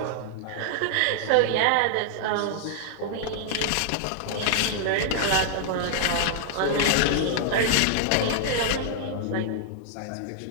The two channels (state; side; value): different; both; correlation -0.01